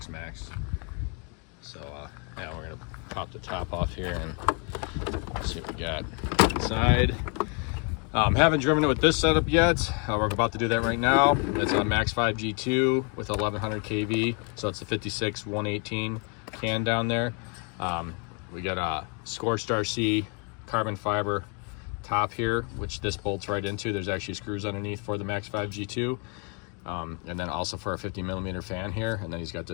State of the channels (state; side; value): quieter; right; 36.3 dB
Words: So yeah, we're gonna pop the top off here and see what we got inside. Haven't driven it with this setup yet. We're about to do that right now. It's a Max5 G2 with 1100 kV, so it's the 56 118 can down there. We got a Scorched RC carbon fiber top here, which this bolts right into. There's actually screws underneath for the Max5 G2. And then also for a 50mm fan here, and then he's got